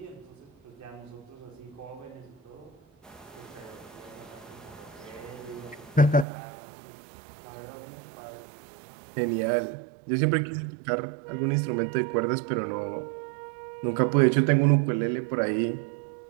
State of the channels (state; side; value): drops out; left; at 6.2 s